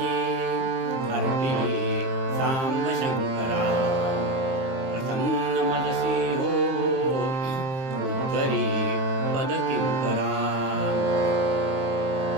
अर्पिली सांब शंकरा प्रसन्न मनसी हो उद्धरी पद किंकरा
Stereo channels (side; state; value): left; late; 22 ms